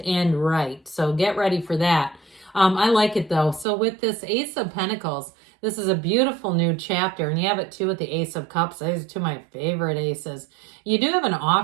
right. So get ready for that. I like it though. So with this Ace of Pentacles, this is a beautiful new chapter. And you have it too with the Ace of Cups. Those are two of my favorite aces. You do have an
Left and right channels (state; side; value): drops out; left; at 3.7 s